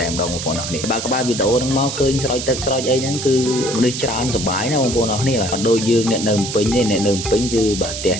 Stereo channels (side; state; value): right; noise; hiss, 6 dB below the sound